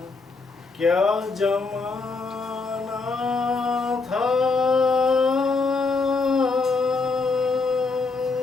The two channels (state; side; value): quieter; right; 4.0 dB